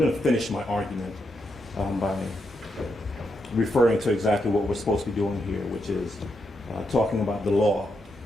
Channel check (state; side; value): normal; both; correlation 0.82